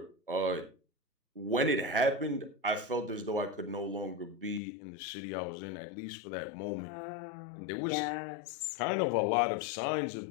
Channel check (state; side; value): drops out; right; at 4.6 s